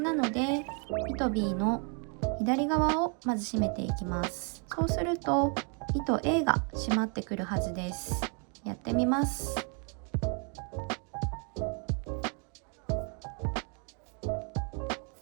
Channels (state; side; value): quieter; left; 37.8 dB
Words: なので糸 B の左側をまず締めていきます。そうすると糸 A が締まってくるはずです。やってみます。